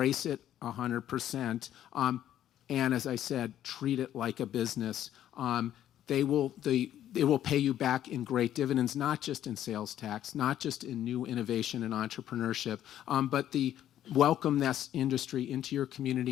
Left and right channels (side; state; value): right; quieter; 11.5 dB